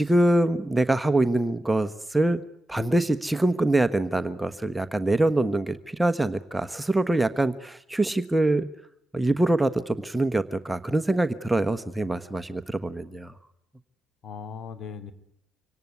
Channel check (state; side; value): normal; both; correlation 0.93